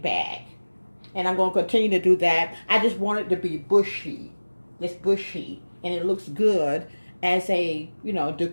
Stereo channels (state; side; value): inverted; both; correlation -1.00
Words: back. And I'm going to continue to do that. I just want it to be bushy. It's bushy. And it looks good as a,